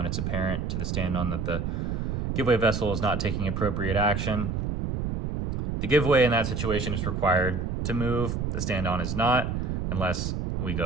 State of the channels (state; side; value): noise; right; rumble, 1 dB below the sound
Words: it's apparent to the stand-on that the giveaway vessel is not taking appropriate action. The giveaway in that situation is required to move. The stand-on is not. Unless we